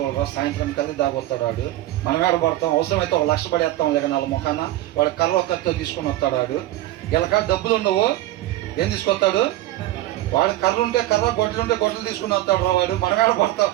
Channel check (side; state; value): left; quieter; 15.5 dB